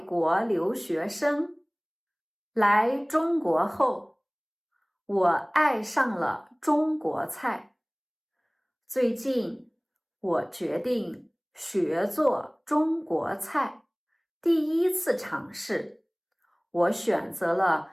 留学生。来中国后，我爱上了中国菜。最近，我决定学做中国菜。第一次尝试，我选择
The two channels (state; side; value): identical; both; correlation 1.00